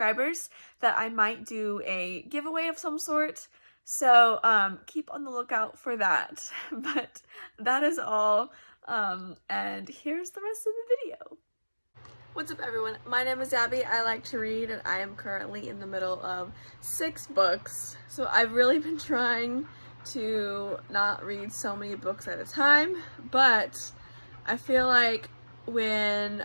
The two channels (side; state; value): both; inverted; correlation -1.00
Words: that I might do a giveaway of some sort. So keep on the lookout for that. But that is all, and here's the rest of the video. What's up everyone, my name is Abby. I like to read and I am currently in the middle of 6 books. So I've really been trying to not read so many books at a time, but I feel like when